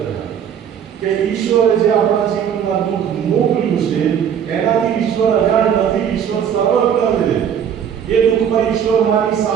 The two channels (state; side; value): quieter; left; 8.4 dB